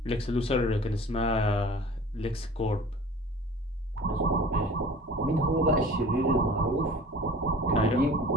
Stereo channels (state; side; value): normal; both; correlation 0.44